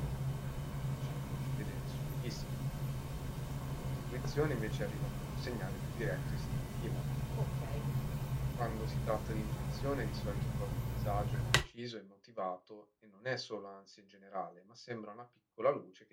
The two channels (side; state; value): both; identical; correlation 1.00